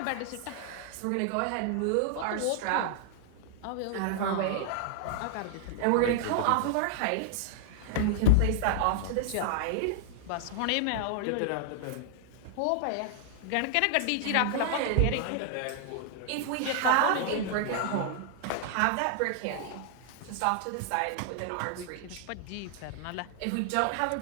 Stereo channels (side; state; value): both; different; correlation -0.01